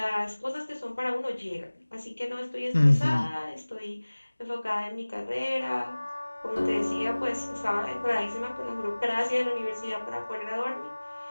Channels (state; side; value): inverted; both; correlation -1.00